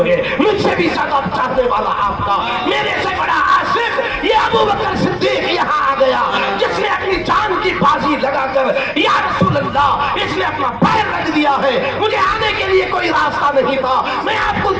ہے مجھ سے بھی زیادہ چاہنے والا آپ کا، میرے سے بڑا عاشق یہ ابو بکر صدیق یہاں آ گیا، جس نے اپنی جان کی بازی لگا کر یا رسول اللہ اس نے اپنا پیر رکھ دیا ہے۔ مجھے آنے کے لیے کوئی راستہ نہیں تھا، میں آپ کو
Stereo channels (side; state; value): both; identical; correlation 1.00